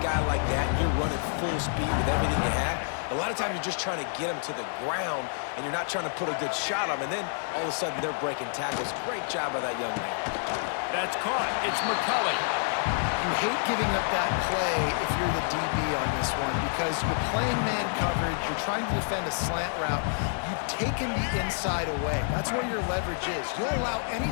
like that, and you're running full speed with everything you have, a lot of times you're just trying to get him to the ground, and you're not trying to put a good shot on him, and then all of a sudden they're breaking tackles. Great job by that young man. That's caught. It's McCulley. You hate giving up that play if you're the DB on this one because you're playing man coverage, you're trying to defend a slant route, you've taken the inside away. That's where your leverage is. You'll allow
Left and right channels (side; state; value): right; silent; digital silence